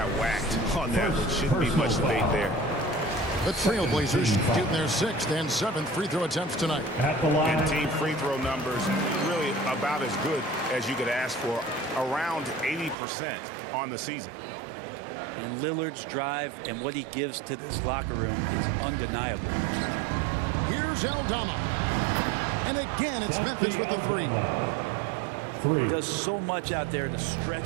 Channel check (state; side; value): drops out; left; at 13.0 s